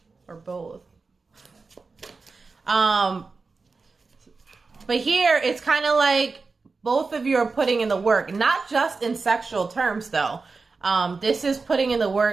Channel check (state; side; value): quieter; left; 4.2 dB